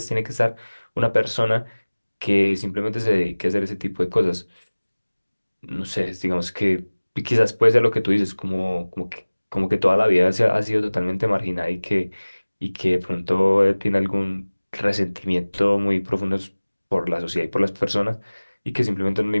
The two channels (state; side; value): inverted; both; correlation -1.00